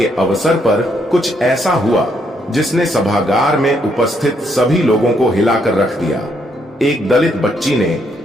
अवसर पर कुछ ऐसा हुआ जिसने सभागार में उपस्थित सभी लोगों को हिलाकर रख दिया। एक दलित बच्ची ने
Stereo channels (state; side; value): normal; both; correlation 0.73